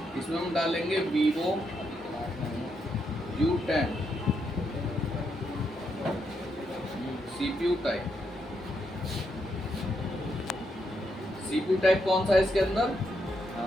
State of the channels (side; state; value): both; normal; correlation 0.79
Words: इसमें हम डालेंगे Vivo U10 CPU type. CPU type कौन सा है इसके अंदर?